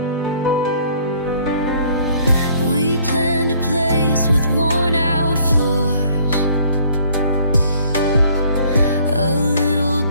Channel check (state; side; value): inverted; both; correlation -0.59